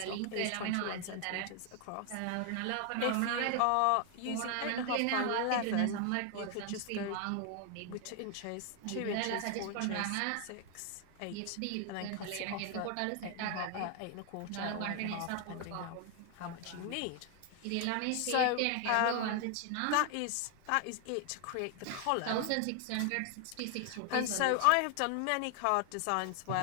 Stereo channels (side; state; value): both; different; correlation 0.00